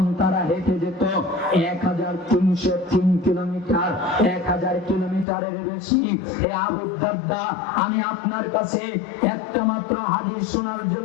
তারা হেঁটে যেত 1303 কিলোমিটার, 1000 কিলোমিটারের বেশি। হে আবু দারদা, আমি আপনার কাছে একটা মাত্র হাদিস শোনার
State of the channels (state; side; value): drops out; right; at 5.2 s